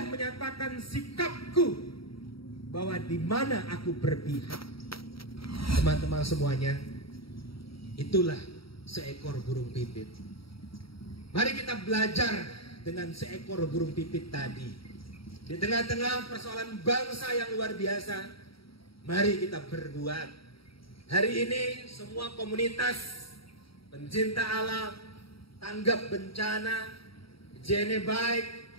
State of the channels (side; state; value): right; late; 0.75 ms